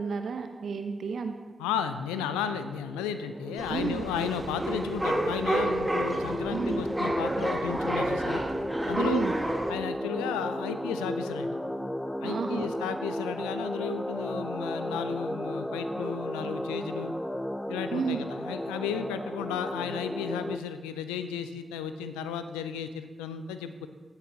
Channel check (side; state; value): both; normal; correlation 0.72